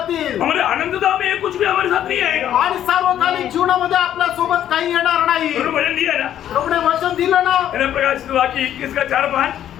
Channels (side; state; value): right; quieter; 10.9 dB